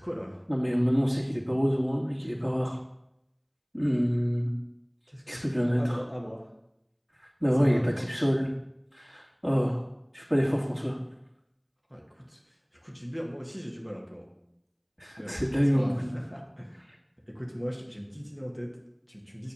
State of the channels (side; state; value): both; identical; correlation 1.00